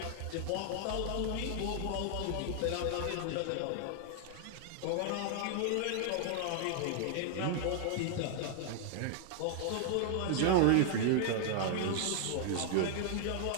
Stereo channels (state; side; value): different; both; correlation 0.00